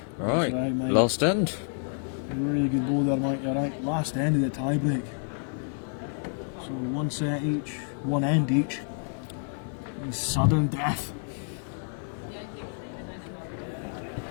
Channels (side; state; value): right; silent; digital silence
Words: Right, right, mate. last end. Really good ball there, Mike. You're right. Last end of the tie break. So one set each, one end each. And sudden death.